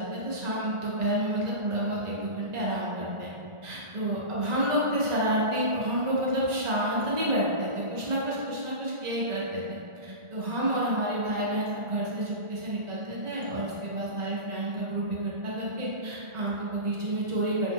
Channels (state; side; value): late; left; 1.4 ms